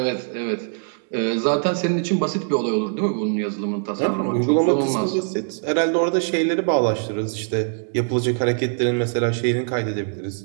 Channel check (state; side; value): silent; left; digital silence